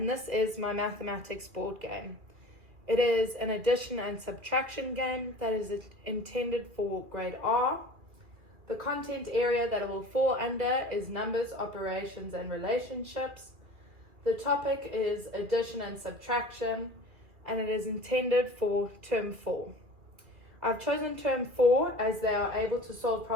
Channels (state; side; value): late; left; 2.4 ms